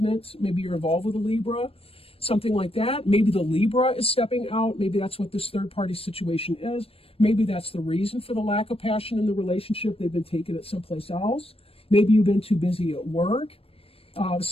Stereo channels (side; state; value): right; late; 0.28 ms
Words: Maybe you're involved with a Libra, something like that. Maybe the Libra is stepping out. Maybe that's what this third-party situation is. Maybe that's the reason for the lack of passion in the relationship. They've been taking it someplace else. Maybe you've been too busy at work,